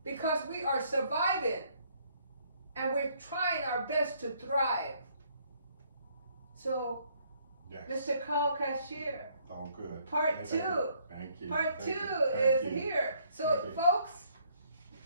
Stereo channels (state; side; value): inverted; both; correlation -0.66